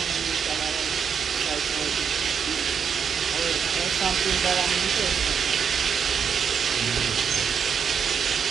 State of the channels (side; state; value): left; quieter; 7.0 dB